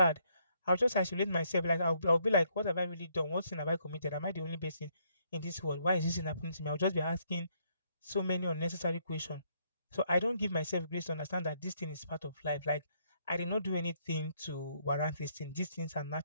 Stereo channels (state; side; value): inverted; both; correlation -0.71